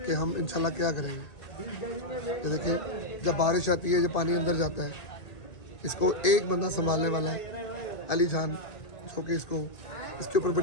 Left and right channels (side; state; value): right; late; 1.8 ms